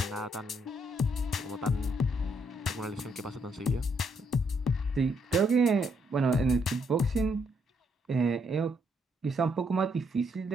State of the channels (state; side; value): normal; both; correlation 0.74